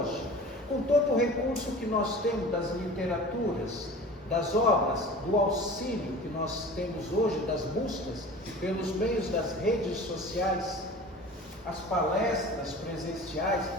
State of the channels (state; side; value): normal; both; correlation 0.39